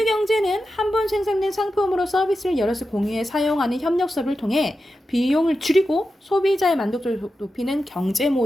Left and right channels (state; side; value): normal; both; correlation 0.90